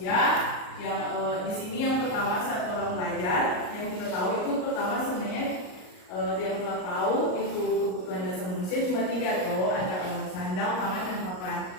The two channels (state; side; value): late; right; 38 ms